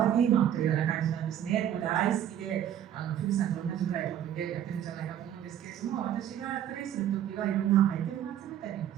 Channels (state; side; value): quieter; left; 10.4 dB